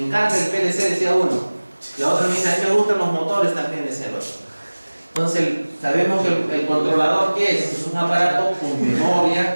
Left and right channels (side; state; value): both; inverted; correlation -1.00